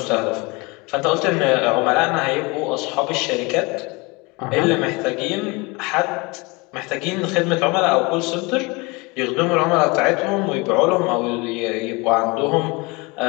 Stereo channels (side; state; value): right; quieter; 26.3 dB